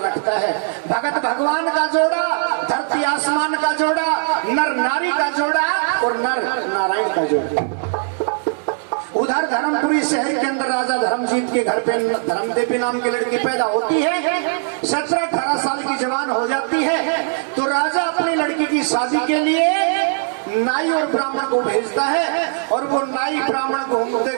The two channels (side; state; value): left; silent; digital silence